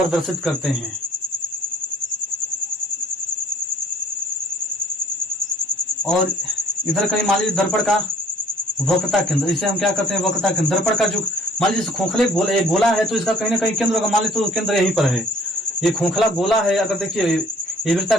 करते हैं। और इधर कहीं मान लीजिए दर्पण का वक्रता केंद्र, इसे हम क्या करते हैं, वक्रता केंद्र। दर्पण का जो मान लीजिए खोखले गोला है तो इसका कहीं ना कहीं केंद्र होगा। मान लीजिए तो केंद्र यहीं पर है। ये खोखला गोला है, अगर देखिए ये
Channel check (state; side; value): normal; both; correlation 0.55